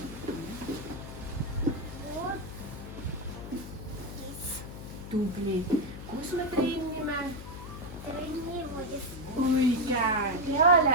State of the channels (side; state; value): left; noise; hum, 11 dB below the sound